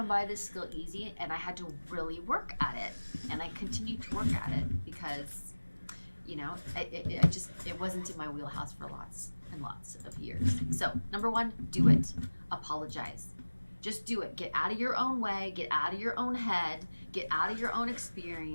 by this skill easy, and I had to really work at it. And I continue to work at it because, you know, it wasn't in my wheelhouse for lots and lots of years. So, number one, do it. Apologize. Just do it. Get out of your own way, get out of your own head, get out of your own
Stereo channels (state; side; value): inverted; both; correlation -1.00